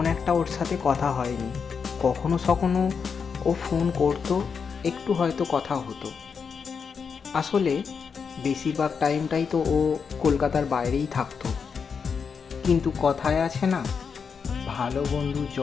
একটা ওর সাথে কথা হয়নি। কখনো সখনো ও ফোন করতো, একটু হয়তো কথা হতো। আসলে বেশিরভাগ টাইমটাই তো ও কলকাতার বাইরেই থাকতো। কিন্তু কথায় আছে না, ভালো বন্ধু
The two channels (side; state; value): right; quieter; 6.0 dB